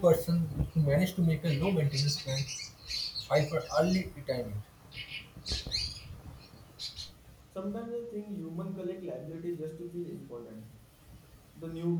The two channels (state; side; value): identical; both; correlation 1.00